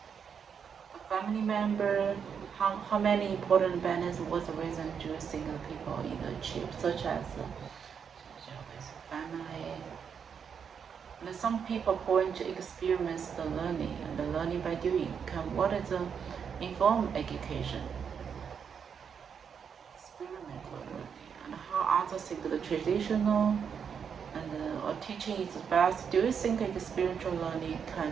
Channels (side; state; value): left; quieter; 7.0 dB